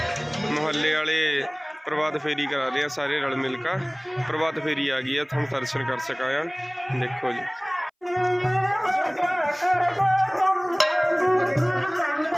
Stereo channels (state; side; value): identical; both; correlation 1.00